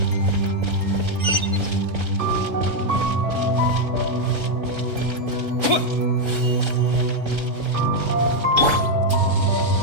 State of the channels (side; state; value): left; late; 3.8 ms